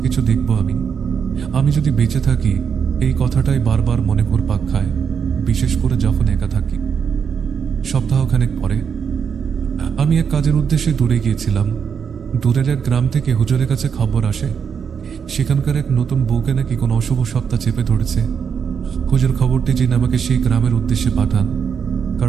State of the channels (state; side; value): quieter; left; 6.9 dB